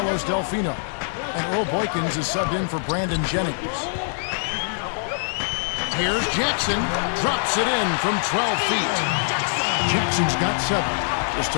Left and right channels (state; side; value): silent; right; digital silence